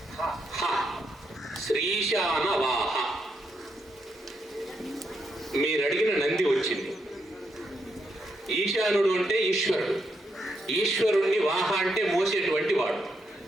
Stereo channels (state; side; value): normal; both; correlation 0.80